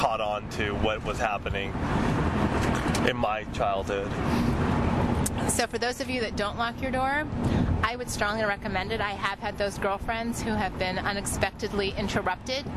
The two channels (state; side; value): identical; both; correlation 1.00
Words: on to what was happening in my childhood. So for those of you that don't lock your door, I would strongly recommend it. I have had those girlfriends who have been unexpectedly interrupted.